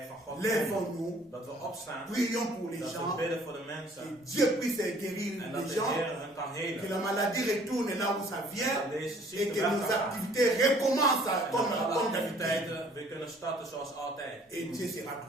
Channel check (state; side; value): normal; both; correlation 0.57